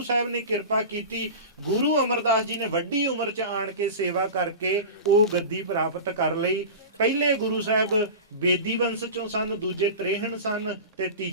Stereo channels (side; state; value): both; inverted; correlation -0.30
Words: ਸਾਹਿਬ ਨੇ ਕਿਰਪਾ ਕੀਤੀ, ਗੁਰੂ ਅਮਰਦਾਸ ਜੀ ਨੇ ਵੱਡੀ ਉਮਰ 'ਚ ਆਣ ਕੇ ਸੇਵਾ ਕਰਕੇ ਉਹ ਗੱਦੀ ਪ੍ਰਾਪਤ ਕਰ ਲਈ। ਪਹਿਲੇ ਗੁਰੂ ਸਾਹਿਬ ਬੇਦੀ ਵੰਸ਼ ਚੋਂ ਸਨ, ਦੂਜੇ ਤ੍ਰੇਹਣ ਸਨ ਤੇ